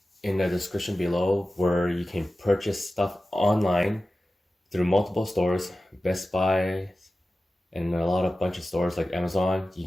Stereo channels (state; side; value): normal; both; correlation 0.95